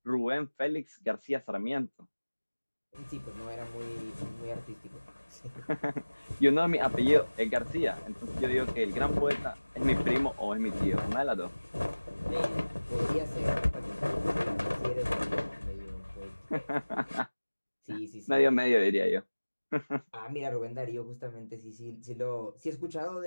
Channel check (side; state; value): both; inverted; correlation -1.00